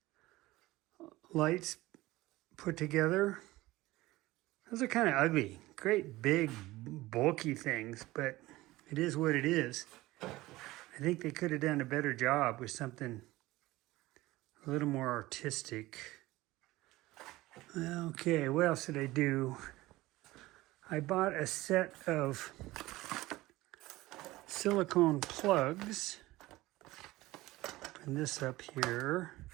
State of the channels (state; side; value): quieter; left; 18.5 dB